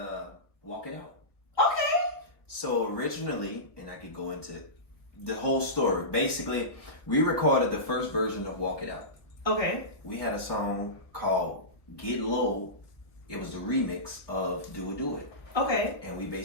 Walk It Out. Okay. So originally, and I could go into the whole story. Basically, we recorded the first version of Walk It Out. Okay. We had a song called Get Low. It was the remix of Do It, Do It. Okay. And we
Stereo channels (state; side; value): late; right; 1.1 ms